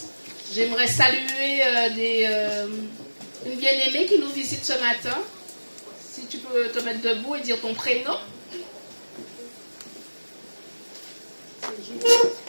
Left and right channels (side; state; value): both; inverted; correlation -1.00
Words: J'aimerais saluer une bien-aimée qui nous visite ce matin. Si tu peux te mettre debout et dire ton prénom.